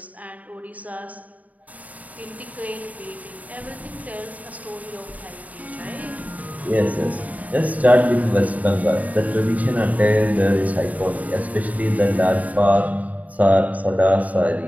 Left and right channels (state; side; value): late; left; 0.072 ms